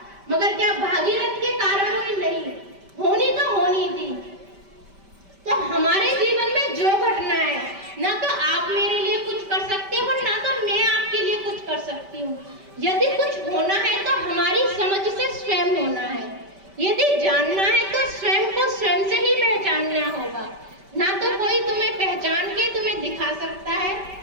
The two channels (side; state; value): left; late; 5.1 ms